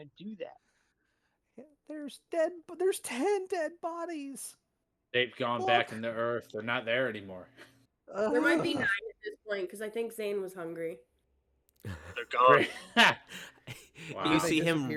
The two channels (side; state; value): both; identical; correlation 1.00